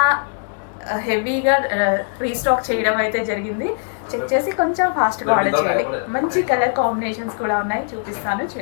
హెవీగా రీస్టాక్ చేయడం అయితే జరిగింది. చెక్ చేసి కొంచెం ఫాస్ట్గా ఆర్డర్ చేయండి. మంచి కలర్ కాంబినేషన్స్ కూడా ఉన్నాయి, చూపిస్తాను.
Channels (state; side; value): silent; right; digital silence